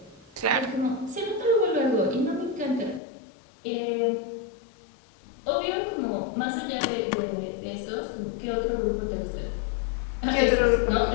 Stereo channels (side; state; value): right; drops out; at 3.0 s